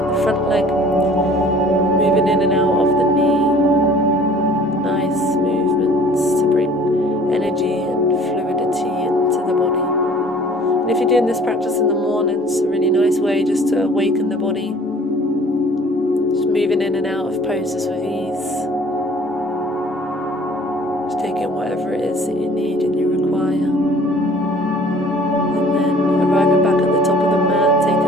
the front leg. Moving in and out of the knee. Nice movements to bring energy and fluidity into the body. And if you're doing this practice in the morning, it's a really nice way just to awaken the body. Just moving in and out of poses with ease. Just taking whatever it is that you need and you require. And then arriving back at the top of the mat,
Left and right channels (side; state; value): both; normal; correlation 0.51